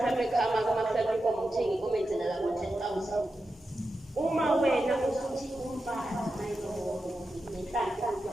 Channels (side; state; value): both; normal; correlation 0.90